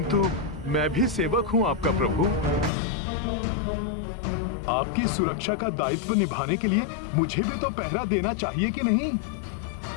मैं भी सेवक हूँ आपका प्रभु। आपकी सुरक्षा का दायित्व निभाने के लिए मुझे भी तो पहरा देना चाहिए कि नहीं?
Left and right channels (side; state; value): right; drops out; at 2.7 s